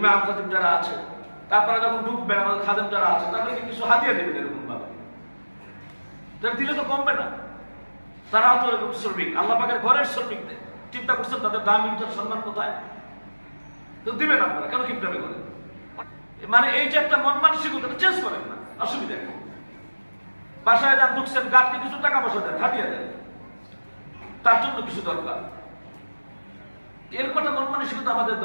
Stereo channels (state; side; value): inverted; both; correlation -1.00